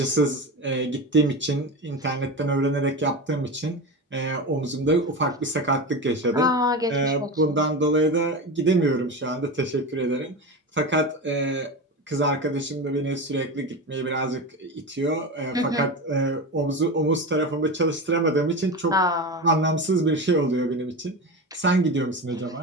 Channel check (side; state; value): both; normal; correlation 0.23